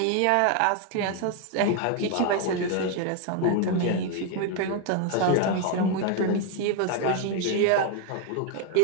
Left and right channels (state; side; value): different; both; correlation 0.01